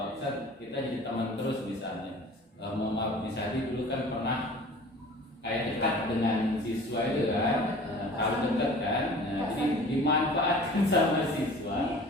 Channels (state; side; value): normal; both; correlation 0.44